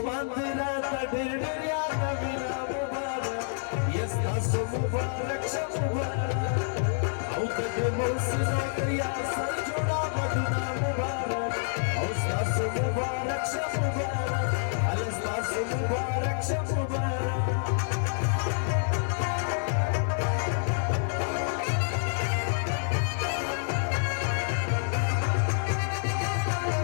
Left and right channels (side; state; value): right; silent; 59 dB below the other